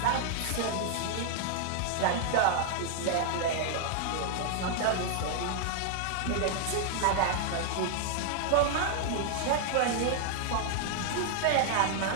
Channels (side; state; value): both; different; correlation -0.01